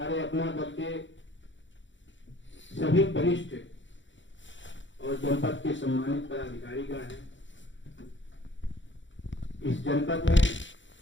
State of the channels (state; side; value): late; right; 0.54 ms